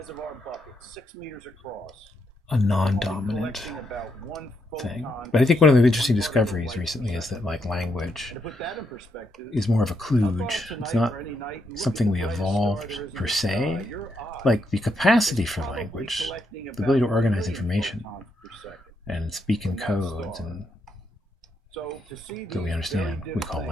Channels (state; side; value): normal; both; correlation 0.79